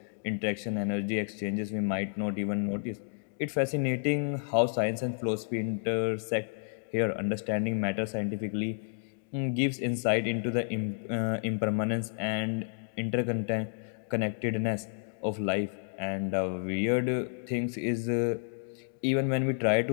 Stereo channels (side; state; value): right; silent; digital silence